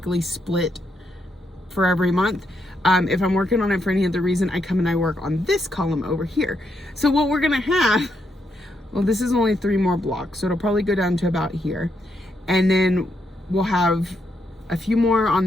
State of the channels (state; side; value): normal; both; correlation 0.79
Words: split for every month, if I'm working on it for any other reason, I come and I work on this column over here. So what we're gonna have, well, this is only 3 more blocks, so it'll probably go down to about here, and then we'll have a few more on